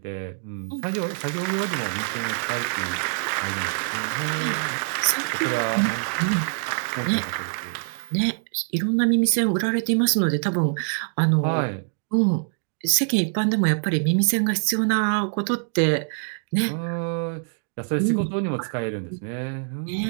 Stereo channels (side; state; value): left; silent; digital silence